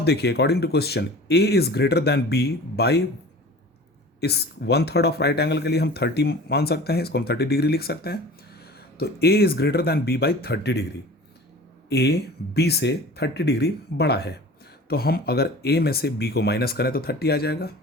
देखिए according to question A is greater than B by, इस 1/3 ऑफ राइट एंगल के लिए हम 30 मान सकते हैं, इसको हम 30 डिग्री लिख सकते हैं। तो A is greater than B by 30 degree. A B से 30 डिग्री बड़ा है, तो हम अगर A में से B को माइनस करें तो 30 आ जाएगा,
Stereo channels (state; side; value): normal; both; correlation 0.41